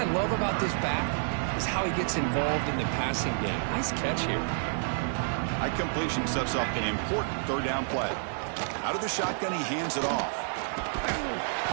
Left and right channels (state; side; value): silent; left; digital silence